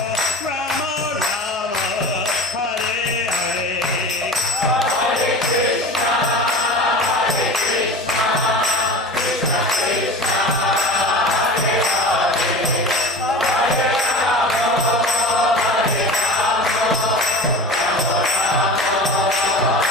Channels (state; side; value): normal; both; correlation 0.34